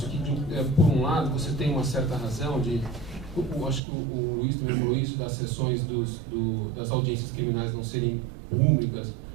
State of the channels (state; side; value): drops out; left; at 3.8 s